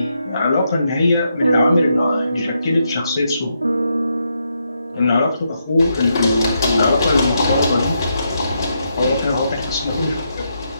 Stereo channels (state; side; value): inverted; both; correlation -0.81